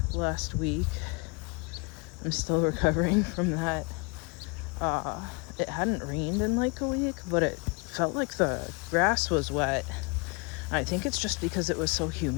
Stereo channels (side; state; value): right; quieter; 31.4 dB